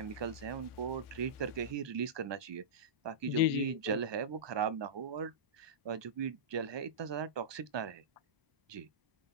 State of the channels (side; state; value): left; late; 1.2 ms